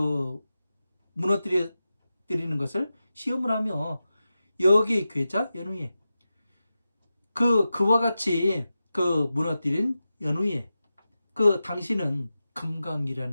무너뜨리는 것을 시험을 하며 여기 괴자 연후에 그와 같이 무너뜨린 연후에 당신은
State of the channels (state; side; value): inverted; both; correlation -0.93